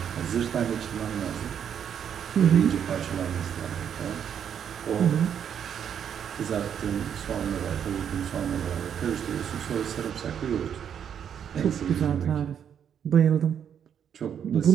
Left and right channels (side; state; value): left; quieter; 8.5 dB